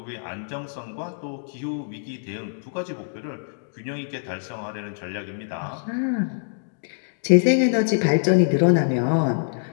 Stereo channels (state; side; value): silent; right; digital silence